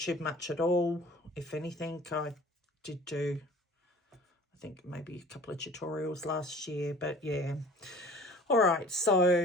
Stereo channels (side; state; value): both; normal; correlation 0.46